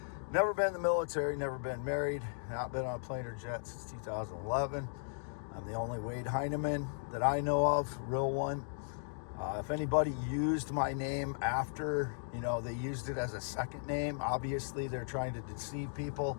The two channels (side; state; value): right; silent; digital silence